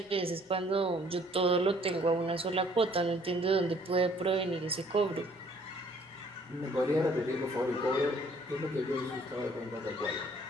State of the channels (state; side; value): normal; both; correlation 0.60